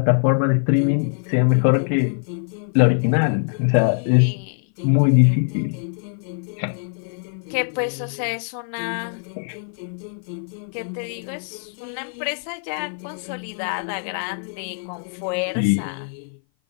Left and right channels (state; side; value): silent; right; 58 dB below the other